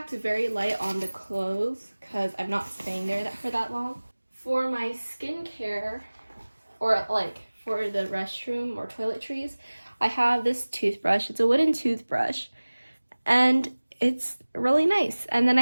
very light on the clothes because I'm not staying there for that long. For my skincare, or like for the restroom or toiletries, I have this toothbrush. It's a wooden toothbrush, and it's really nice. And then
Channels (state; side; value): inverted; both; correlation -1.00